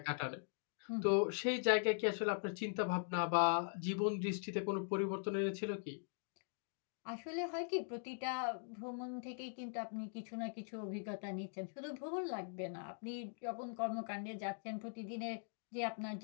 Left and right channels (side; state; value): right; silent; digital silence